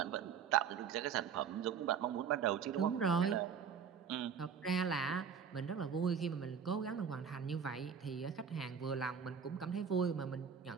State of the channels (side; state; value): left; quieter; 7.0 dB